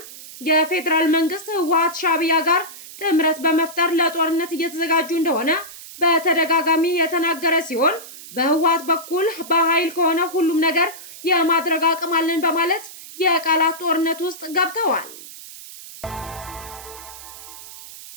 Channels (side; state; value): right; noise; hiss, 15 dB below the sound